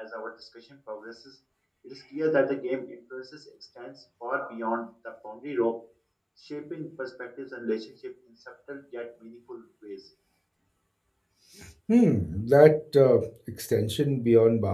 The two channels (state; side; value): identical; both; correlation 1.00